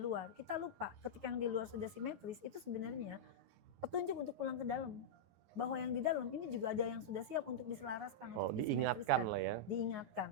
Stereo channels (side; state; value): left; late; 12 ms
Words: Kita lupa ketika yang di luar sudah simetris itu sebenarnya petunjuk untuk pulang ke dalam. Bahwa yang di dalam ini juga ada yang sudah siap untuk diselaraskan, untuk diingatkan lah ya.